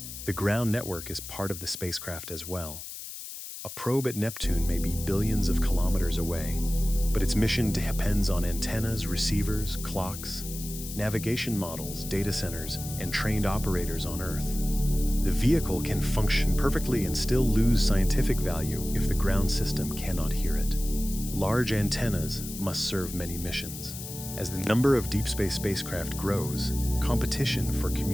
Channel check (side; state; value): left; noise; hiss, 10 dB below the sound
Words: The ground network is part of the spacecraft as well. A probe at Neptune may be billions of kilometers away, but its mission depends on antennas, receivers, clocks, navigation models, data centers, and trained operators on Earth. The vehicle can function perfectly and still lose scientific value if the ground system cannot hear it. Large antennas must serve many missions. As the number of deep space spacecraft grows, competition for